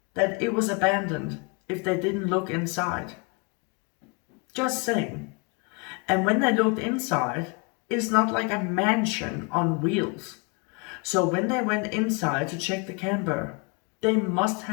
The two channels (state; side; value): quieter; right; 31.5 dB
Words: that it was abandoned if they didn't look inside? Just saying. And when they looked inside, it's not like a mansion on wheels. So when they went inside to check the camper, they must